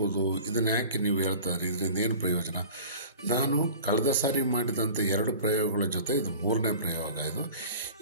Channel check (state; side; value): inverted; both; correlation -0.42